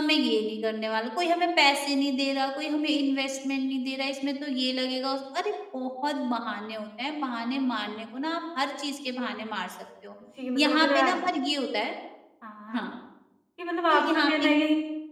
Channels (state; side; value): identical; both; correlation 1.00